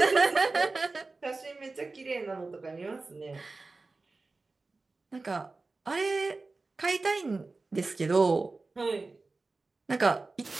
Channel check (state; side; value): quieter; left; 3.6 dB